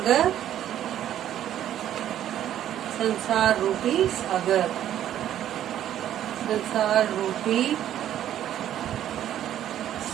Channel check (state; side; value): quieter; left; 11.3 dB